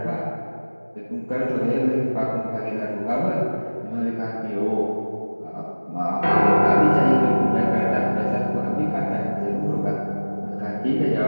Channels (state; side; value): inverted; both; correlation -1.00